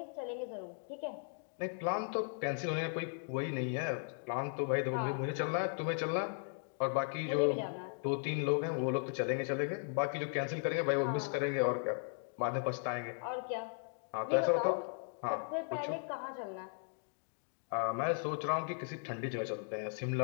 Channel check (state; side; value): silent; right; 53 dB below the other